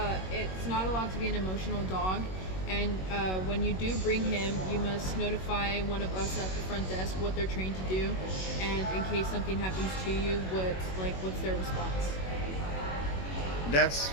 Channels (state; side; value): late; right; 21 ms